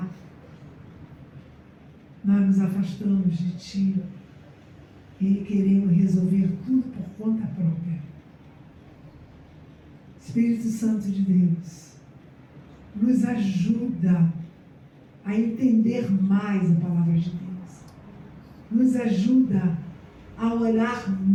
nós nos afastamos de Ti e queremos resolver tudo por conta própria. Espírito Santo de Deus, nos ajuda a entender mais a palavra de Deus. Nos ajuda a orar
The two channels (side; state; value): both; identical; correlation 1.00